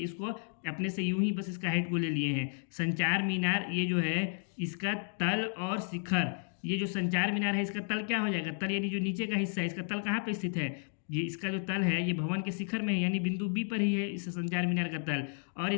अपने से यूं ही बस इसका हाइट को ले लिए हैं। संचार मीनार ये जो है इसका तल और शिखर, ये जो संचार मीनार है इसका तल क्या हो जाएगा, तल यानी जो नीचे का हिस्सा है, इसका तल कहाँ पे स्थित है, ये इसका जो तल है ये भवन के शिखर में है, यानी बिंदु बी पर ही है इस संचार मीनार का तल। और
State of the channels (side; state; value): right; silent; 56 dB below the other